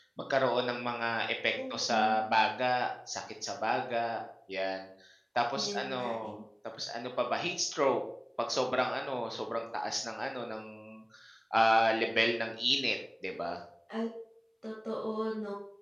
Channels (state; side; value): identical; both; correlation 1.00